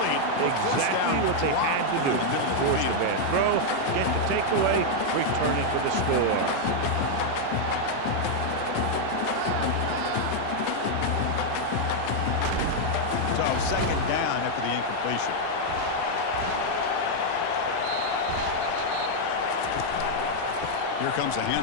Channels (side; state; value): both; different; correlation -0.01